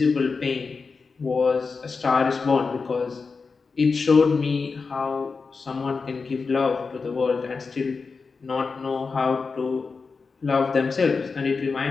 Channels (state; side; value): quieter; right; 4.7 dB